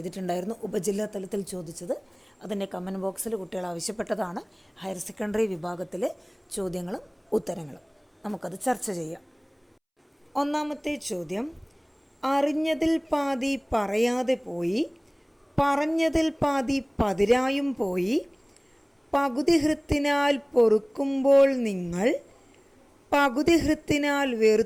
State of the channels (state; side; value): identical; both; correlation 1.00